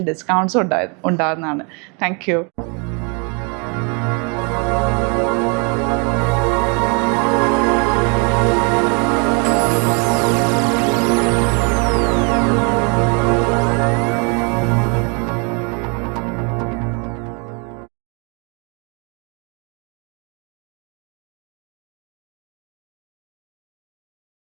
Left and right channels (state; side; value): quieter; left; 34.9 dB